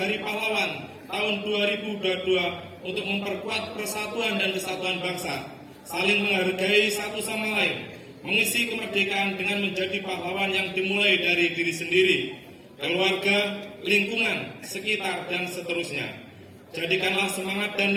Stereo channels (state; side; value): identical; both; correlation 1.00